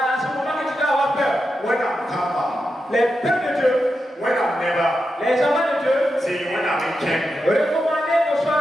à ce moment que tu dois avoir peur. Les peuples de Dieu, les enfants de Dieu, recommandez que soit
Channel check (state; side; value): normal; both; correlation 0.88